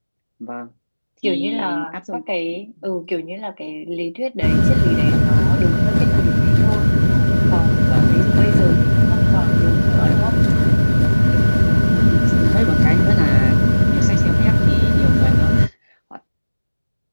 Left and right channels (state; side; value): inverted; both; correlation -1.00